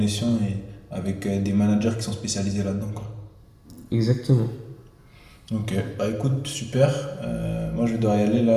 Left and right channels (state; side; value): identical; both; correlation 1.00